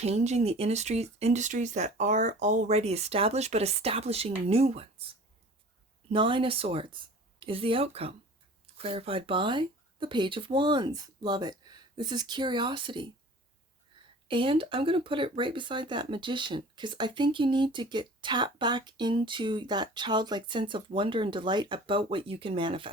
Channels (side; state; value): both; normal; correlation 0.43